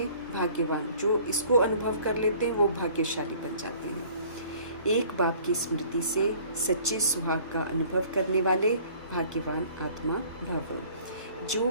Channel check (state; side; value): inverted; both; correlation -0.52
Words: भाग्यवान, जो इसको अनुभव कर लेते हैं वो भाग्यशाली बन जाते हैं। एक बाप की स्मृति से सच्चे सुहाग का अनुभव करने वाले भाग्यवान आत्मा भव, जो